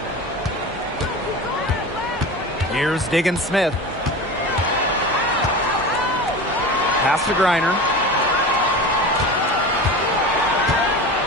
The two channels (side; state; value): both; normal; correlation 0.30